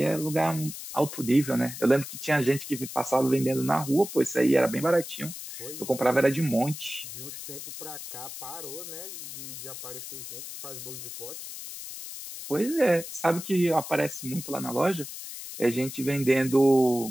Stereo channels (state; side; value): noise; left; hiss, 10 dB below the sound